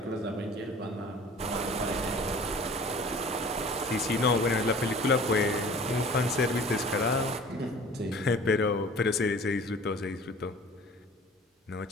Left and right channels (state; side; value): normal; both; correlation 0.45